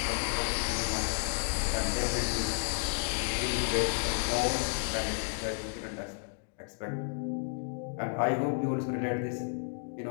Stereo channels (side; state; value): right; silent; digital silence